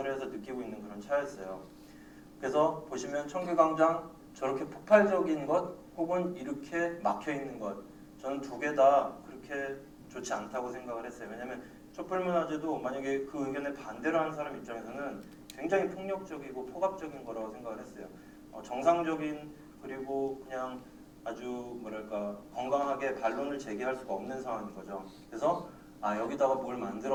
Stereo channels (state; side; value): identical; both; correlation 1.00